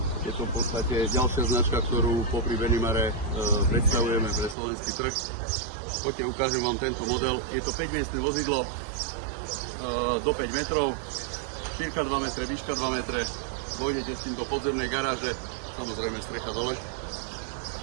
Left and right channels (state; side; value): drops out; left; at 4.5 s